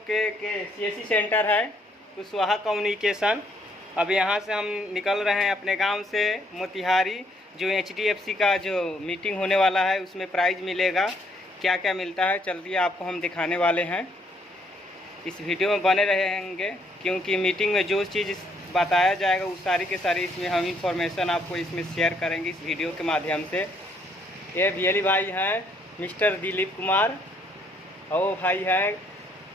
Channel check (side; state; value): both; normal; correlation 0.69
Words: के सीएससी सेंटर है कुशवाहा कम्युनिकेशन। अब यहां से हम निकल रहे हैं अपने गांव से मोतिहारी। जो एचडीएफसी का जो मीटिंग होने वाला है उसमें प्राइज़ मिलेगा। क्या क्या मिलता है चलिए आपको हम दिखाने वाले हैं। इस वीडियो में बने रहेंगे क्योंकि मीटिंग में जो चीज़ बताया जाएगा वो सारी के सारी इसमें हम इंफॉर्मेशन आपको इसमें शेयर करेंगे इस वीडियो के माध्यम से। ये बियली भाई हैं मिस्टर दिलीप कुमार, और वो भाई हैं